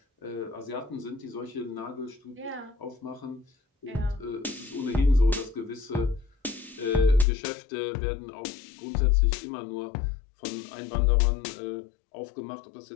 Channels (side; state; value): right; drops out; at 7.2 s